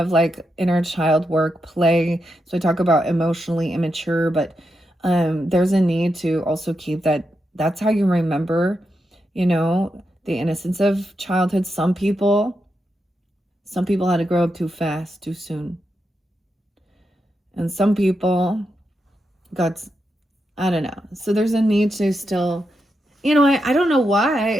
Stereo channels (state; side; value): normal; both; correlation 0.85